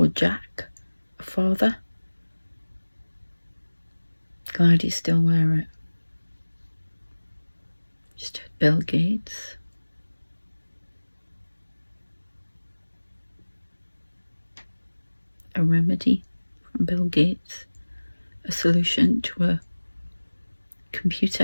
Jack, a father. Glad you still wear it. Just heard Bill Gates. A remedy from Bill Gates. A solution to a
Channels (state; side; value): inverted; both; correlation -1.00